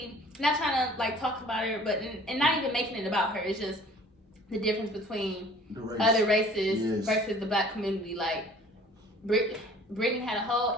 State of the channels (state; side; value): normal; both; correlation 0.51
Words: Not trying to like talk about her, but and not even making it about her. It's just the difference between other races versus the black community. Like Britney had a whole